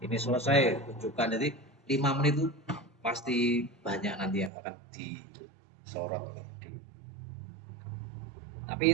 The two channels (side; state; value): left; drops out; at 4.5 s